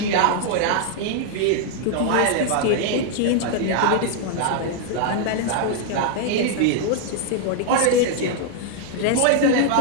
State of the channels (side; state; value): both; different; correlation 0.00